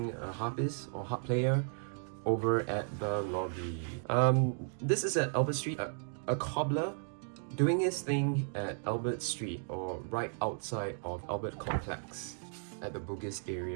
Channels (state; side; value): silent; left; 55 dB below the other